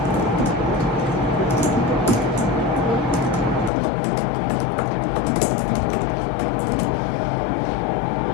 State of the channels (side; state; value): right; drops out; at 3.7 s